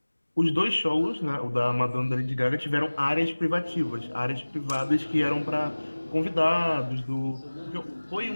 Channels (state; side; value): inverted; both; correlation -1.00